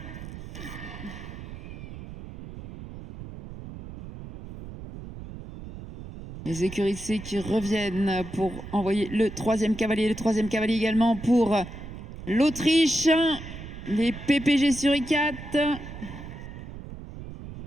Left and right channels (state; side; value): noise; right; rumble, 12 dB below the sound